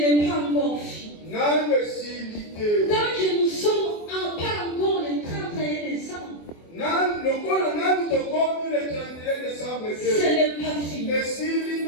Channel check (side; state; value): right; late; 24 ms